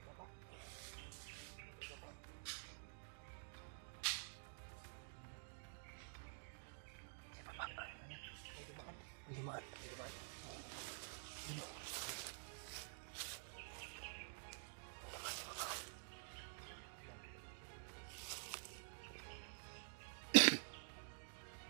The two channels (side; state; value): left; silent; digital silence